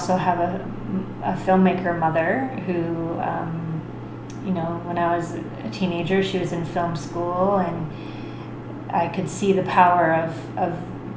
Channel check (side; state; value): both; identical; correlation 1.00